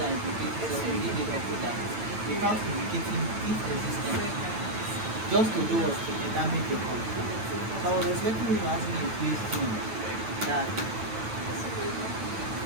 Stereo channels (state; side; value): late; left; 9.0 ms